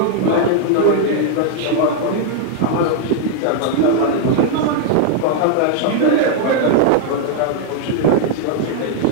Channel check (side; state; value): both; different; correlation 0.00